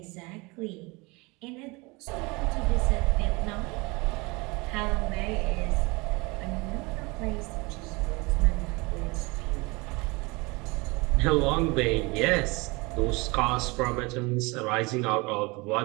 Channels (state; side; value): quieter; left; 25.8 dB